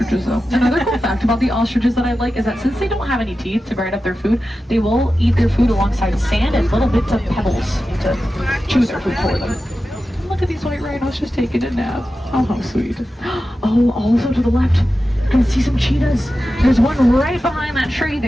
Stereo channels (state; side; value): normal; both; correlation 0.93